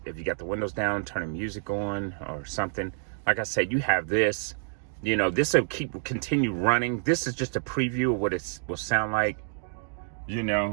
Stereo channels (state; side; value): silent; left; digital silence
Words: if you got the windows down, turn the music on or something. Like I said, you have this, you know, this will continue running. This is just a preview of what it will sound like, you